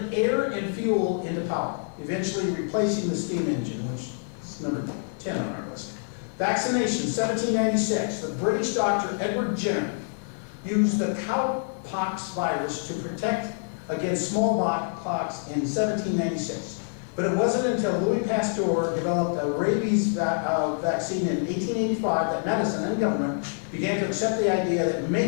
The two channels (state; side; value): silent; right; 61 dB below the other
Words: air and fuel into power, eventually replacing the steam engine, which is number 10 on our list. Vaccination, 1796. The British doctor Edward Jenner used the cowpox virus to protect against smallpox in 1796. But it wasn't until Louis Pasteur developed a rabies vaccine in 1885 that medicine and government began to accept the idea that